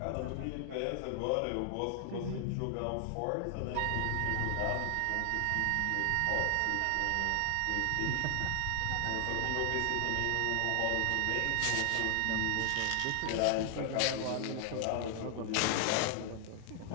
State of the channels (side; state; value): both; different; correlation 0.00